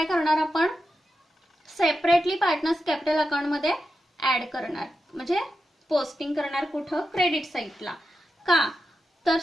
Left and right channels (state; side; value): normal; both; correlation 0.90